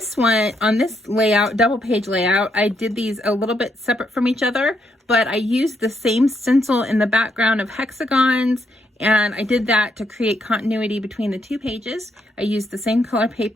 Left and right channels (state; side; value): normal; both; correlation 0.77